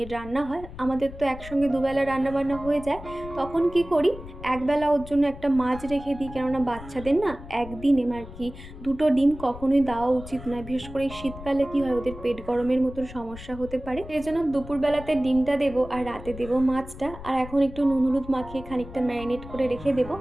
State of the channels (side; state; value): left; noise; rumble, 14 dB below the sound